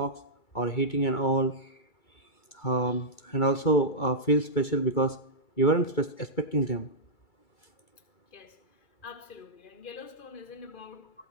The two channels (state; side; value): late; right; 2.3 ms